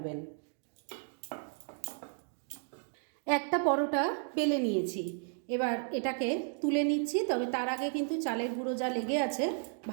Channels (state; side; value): silent; left; 55 dB below the other